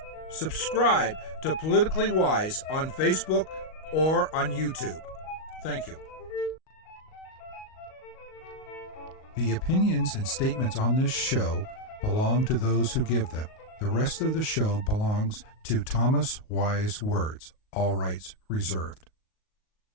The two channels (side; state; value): right; late; 38 ms